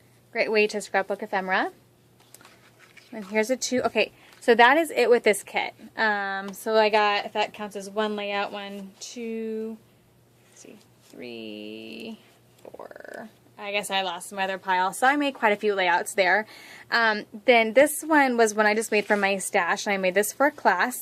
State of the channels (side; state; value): both; identical; correlation 1.00